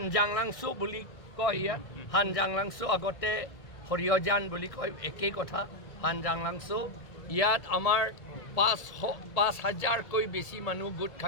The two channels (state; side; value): late; right; 1.7 ms